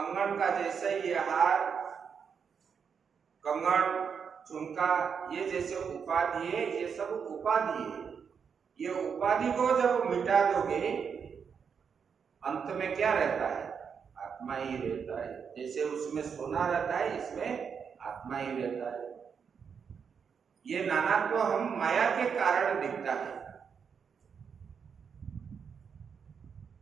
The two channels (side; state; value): left; quieter; 6.6 dB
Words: का जैसे ये हार, कंगन, झुमका, ये जैसे उपाधि है, ये सब उपाधि है। ये उपाधि को जब मिटा दोगे अंत में क्या रहता है, आत्मा ही रहता है। जैसे उसमें सोना रहता है, इसमें आत्मा ही रहता है। ये नानात्व हम माया के कारण दिखता है,